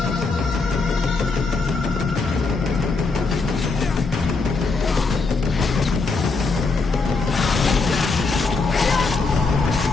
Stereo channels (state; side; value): quieter; right; 4.0 dB